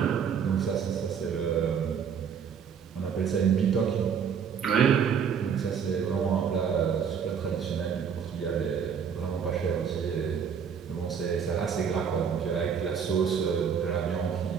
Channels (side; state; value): left; quieter; 7.2 dB